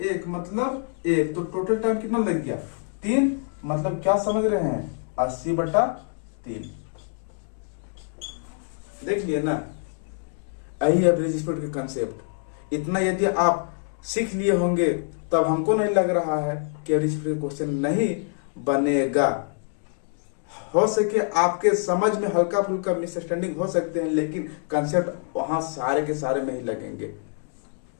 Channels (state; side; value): silent; right; 58 dB below the other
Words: 1 मतलब 1। तो टोटल टाइम कितना लग गया, 3। मतलब क्या समझ रहे हैं, 80/3। देख लिए ना, यही एवरेज स्पीड के कंसेप्ट। इतना यदि आप सीख लिए होंगे तब हमको नहीं लग रहा है कि एवरेज स्पीड क्वेश्चन नहीं बनेगा। हो सके आपके समझ में हल्का फुल्का मिसअंडरस्टैंडिंग हो सकते हैं, लेकिन कंसेप्ट वहां सारे के सारे में ही लगेंगे।